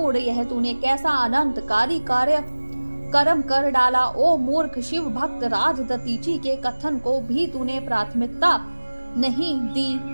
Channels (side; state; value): both; inverted; correlation -1.00